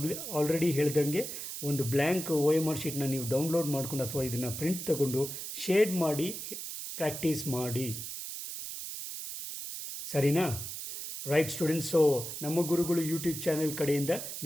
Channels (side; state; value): right; noise; hiss, 7 dB below the sound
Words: ಆಲ್ರೆಡಿ ಹೇಳ್ದಂಗೆ ಒಂದು ಬ್ಲ್ಯಾಂಕ್ OMR ಶೀಟ್ನ ನೀವು ಡೌನ್ಲೋಡ್ ಮಾಡ್ಕೊಂಡು ಅಥವಾ ಇದನ್ನು ಪ್ರಿಂಟ್ ತಗೊಂಡು ಶೇಡ್ ಮಾಡಿ ಪ್ರಾಕ್ಟೀಸ್ ಮಾಡಿ. ಸರಿನಾ? ರೈಟ್ ಸ್ಟೂಡೆಂಟ್ಸ್, ಸೊ ನಮ್ಮ ಗುರುಗಳು ಯೂಟ್ಯೂಬ್ ಚಾನೆಲ್ ಕಡೆಯಿಂದ